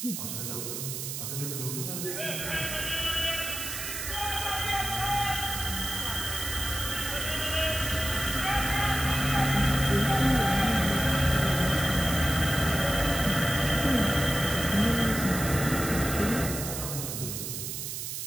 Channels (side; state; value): right; noise; hiss, 5 dB below the sound